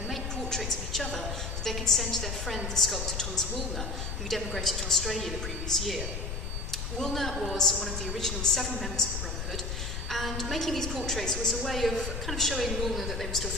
make portraits of each other that they could send to their friend the sculptor Thomas Woolner, who'd emigrated to Australia the previous year. Woolner was one of the original 7 members of the Brotherhood, and making these portraits was a way of kind of showing Woolner that they were still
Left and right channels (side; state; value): left; noise; rumble, 4 dB below the sound